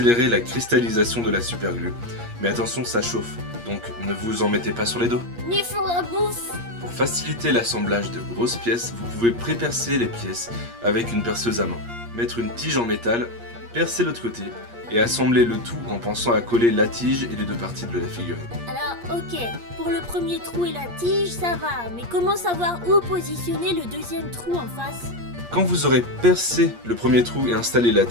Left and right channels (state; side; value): late; left; 8.5 ms